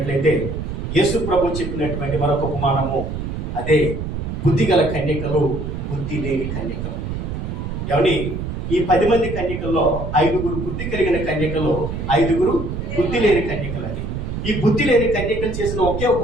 యేసు ప్రభు చెప్పినటువంటి మరొక ఉపమానము, అదే బుద్ధిగల కన్యకలు, బుద్ధి లేని కన్యకలు. ఏమండి, ఈ 10 మంది కన్యకల్లో 5గురు బుద్ధి కలిగిన కన్యకలు, 5గురు బుద్ధి లేని కన్యకలు. అని ఈ బుద్ధి లేని కన్యకలు చేసిన ఒకే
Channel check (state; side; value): noise; right; rumble, 5 dB below the sound